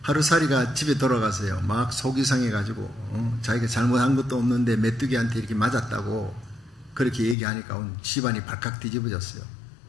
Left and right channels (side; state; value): right; drops out; at 7.4 s